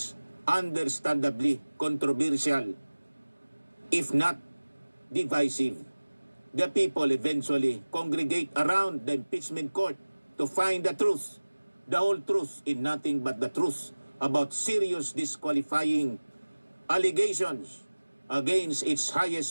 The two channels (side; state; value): both; inverted; correlation -1.00